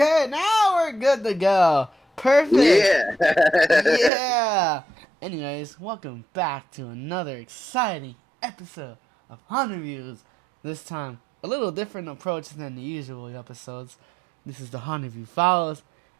now we're good to go. Perfect. Yeah. Yeah. Anyways, welcome back to another exciting episode of Haunterviews. This time, a little different approach than the usual episodes. This is the Haunterview Files,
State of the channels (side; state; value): left; drops out; at 4.1 s